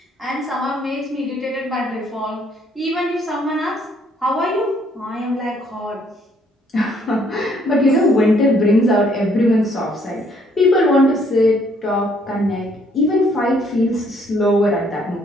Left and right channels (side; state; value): both; normal; correlation 0.66